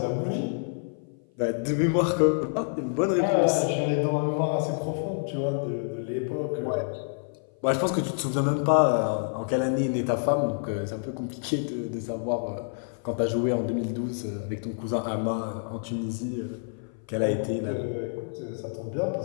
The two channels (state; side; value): silent; right; 56 dB below the other